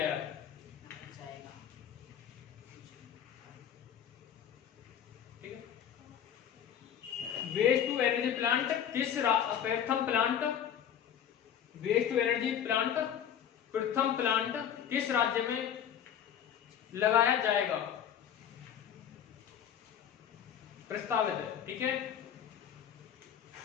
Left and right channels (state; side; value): quieter; right; 9.2 dB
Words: है? ठीक है, वेस्ट टू एनर्जी प्लांट प्रथम plant, waste to energy plant प्रथम प्लांट किस राज्य में लगाया जाएगा? प्रस्तावित है। ठीक है,